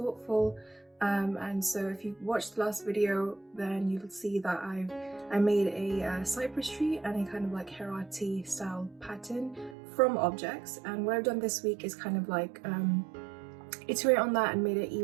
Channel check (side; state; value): left; drops out; at 9.8 s